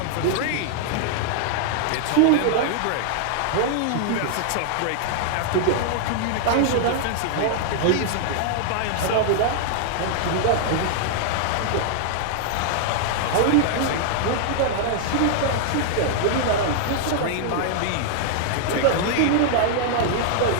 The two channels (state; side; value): different; both; correlation -0.01